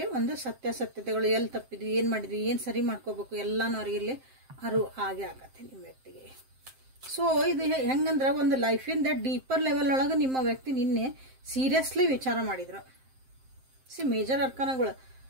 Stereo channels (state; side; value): late; left; 7.6 ms